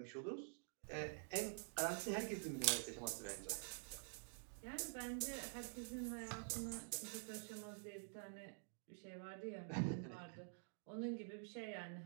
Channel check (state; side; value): silent; left; digital silence